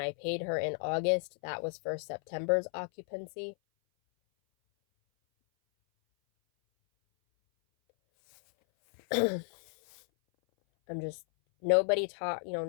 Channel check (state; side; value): silent; right; 56 dB below the other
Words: paid her in August, that was for September's occupancy. Nobody